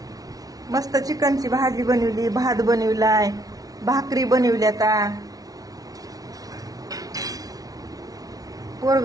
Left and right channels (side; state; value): left; late; 0.18 ms